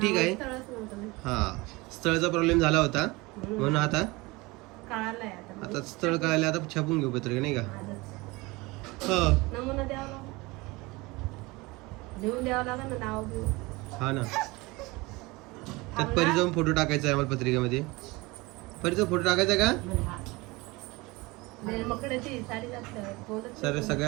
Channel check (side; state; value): left; quieter; 23.3 dB